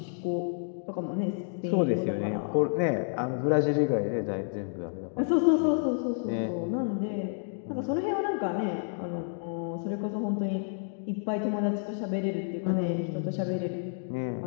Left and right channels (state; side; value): silent; right; digital silence